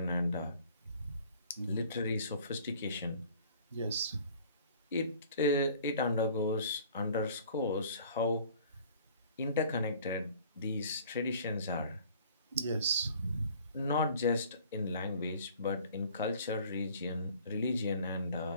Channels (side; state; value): both; inverted; correlation -0.51